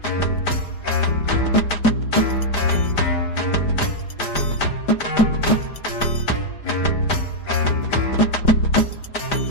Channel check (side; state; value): right; late; 5.0 ms